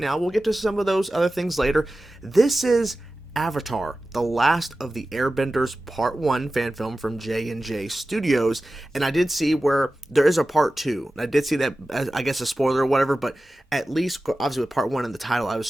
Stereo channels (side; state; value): both; normal; correlation 0.95